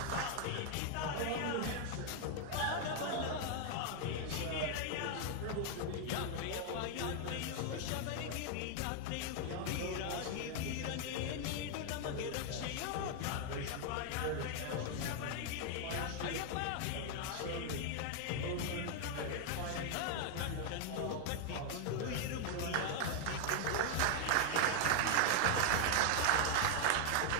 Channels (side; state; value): both; different; correlation 0.00